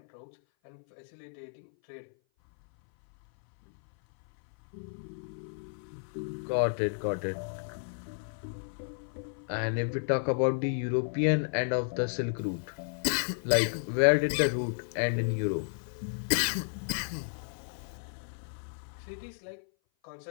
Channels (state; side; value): silent; right; 56 dB below the other